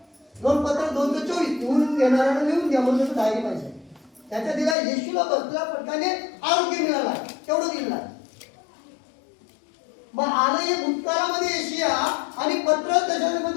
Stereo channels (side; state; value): right; drops out; at 4.8 s